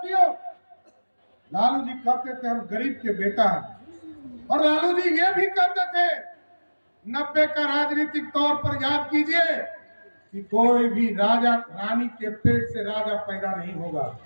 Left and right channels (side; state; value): both; inverted; correlation -1.00